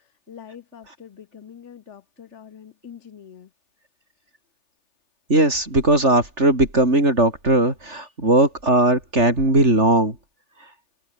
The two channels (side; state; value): left; late; 3.4 ms